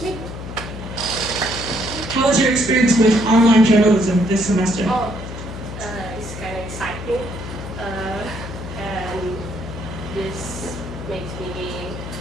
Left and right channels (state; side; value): noise; left; hum, 9 dB below the sound